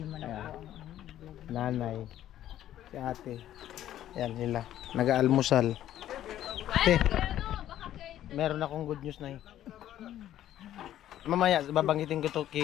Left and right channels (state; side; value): quieter; right; 12.2 dB